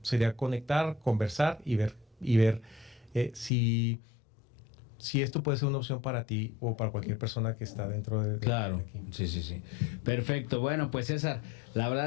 sería conectar, conversar y ver si esto puede ser una opción para ti o para cualquier persona que está dentro de claro, aquí. Sí. Perfecto. Bueno, pues César, la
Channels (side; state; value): right; drops out; at 3.5 s